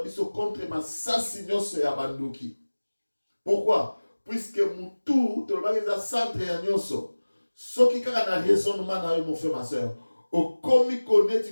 biso contre ma sasi nyonso ya bandoki. Pourquoi? Puisque mutu to ba eza centre ya nyonso. Soki kaka na raisonnement na yo mon frère ma sœur. O komi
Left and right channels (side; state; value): both; inverted; correlation -1.00